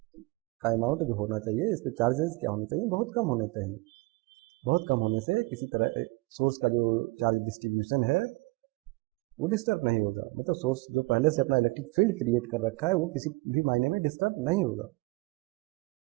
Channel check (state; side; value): quieter; left; 24.4 dB